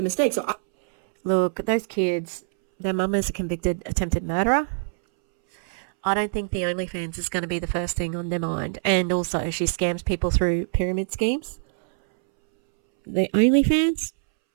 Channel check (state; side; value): silent; left; 63 dB below the other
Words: mistakes. So look, those kids, their mum is a convicted attempted murderer. I don't think the OnlyFans is going to be the first thing on their mind. And also, she scams people through pyramid schemes. The OnlyFans,